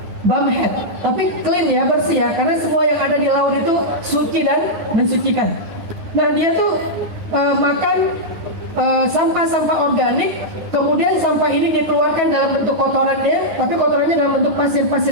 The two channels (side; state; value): left; late; 9.2 ms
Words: bumhead. Tapi clean ya, bersih ya, karena semua yang ada di laut itu suci dan mensucikan. Nah, dia tuh makan sampah-sampah organik, kemudian sampah ini dikeluarkan dalam bentuk kotorannya, tapi kotorannya dalam bentuk